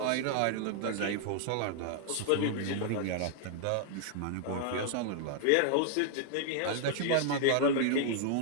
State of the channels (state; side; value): different; both; correlation -0.01